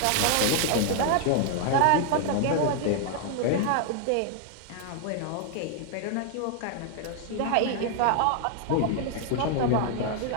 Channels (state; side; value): different; both; correlation 0.00